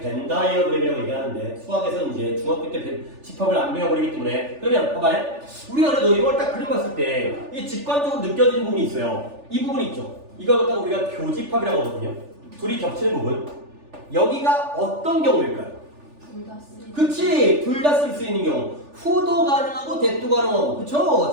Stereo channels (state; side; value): late; left; 3.4 ms